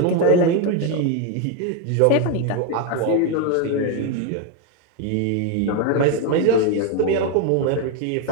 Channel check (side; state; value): both; different; correlation 0.02